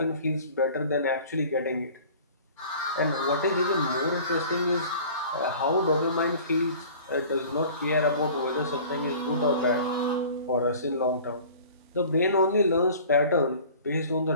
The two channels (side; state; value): both; inverted; correlation -0.45